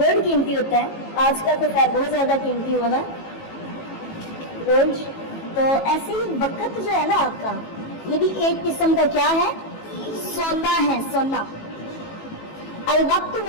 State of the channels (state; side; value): late; right; 18 ms